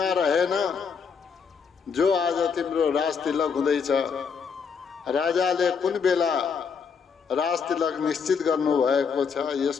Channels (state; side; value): quieter; right; 6.1 dB